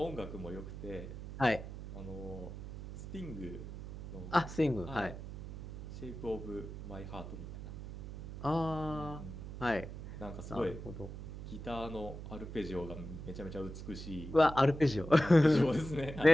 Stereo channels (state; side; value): noise; right; hum, 9 dB below the sound